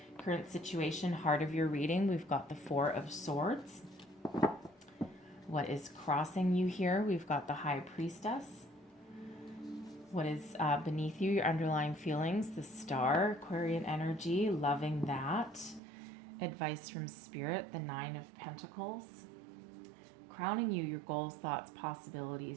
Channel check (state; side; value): drops out; left; at 15.8 s